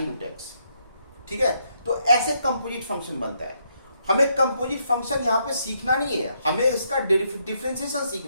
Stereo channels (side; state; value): both; inverted; correlation -0.76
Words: रूट x, ठीक है। तो ऐसे कंपोजिट फंक्शन बनता है। हमें कंपोजिट फंक्शन यहाँ पे सीखना नहीं है, हमें इसका डिफरेंशिएशन